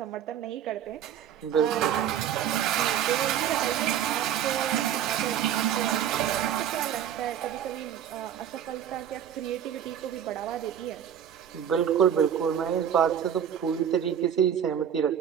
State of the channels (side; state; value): left; quieter; 9.4 dB